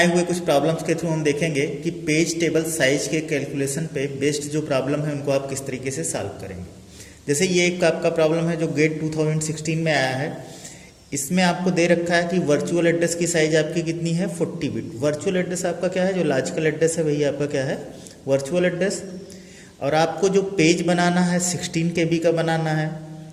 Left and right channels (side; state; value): both; identical; correlation 1.00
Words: हुए कुछ प्रॉब्लम्स के थ्रू हम देखेंगे कि पेज टेबल साइज के कैलकुलेशन पे बेस्ड जो प्रॉब्लम है उनको आप किस तरीके से सॉल्व करेंगे। जैसे ये एक आपका प्रॉब्लम है जो गेट 2016 में आया है। इसमें आपको दे रखा है कि वर्चुअल एड्रेस की साइज आपकी कितनी है 40 बिट। वर्चुअल एड्रेस आपका क्या है, जो लॉजिकल एड्रेस है वही आपका क्या है वर्चुअल एड्रेस। और आपको जो पेज बनाना है 16 KB का बनाना है।